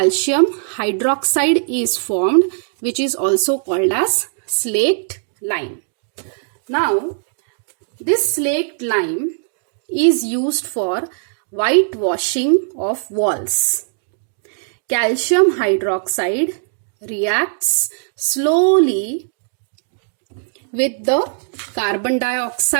hydroxide is formed, which is also called as slaked lime. Now, this slaked lime is used for whitewashing of walls. Calcium hydroxide reacts slowly with the carbon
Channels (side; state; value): left; silent; digital silence